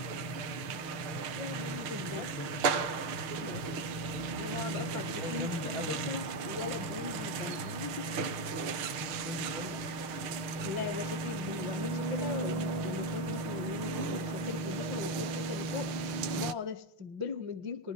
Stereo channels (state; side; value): late; left; 5.9 ms